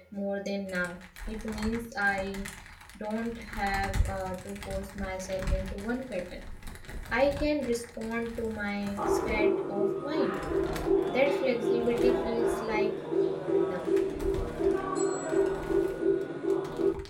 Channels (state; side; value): identical; both; correlation 1.00